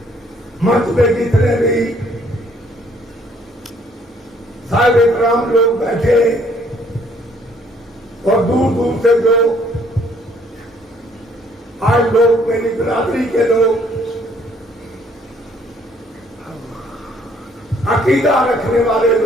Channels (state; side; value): normal; both; correlation 0.63